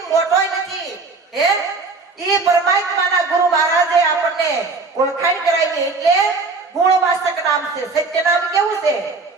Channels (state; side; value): quieter; left; 4.0 dB